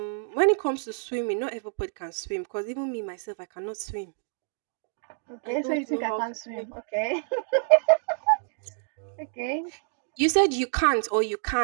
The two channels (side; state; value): left; silent; digital silence